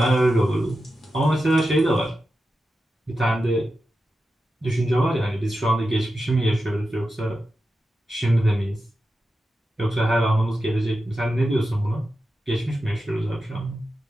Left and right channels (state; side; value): normal; both; correlation 0.91